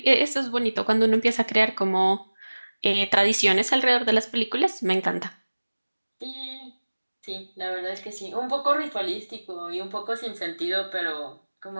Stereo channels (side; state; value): both; inverted; correlation -1.00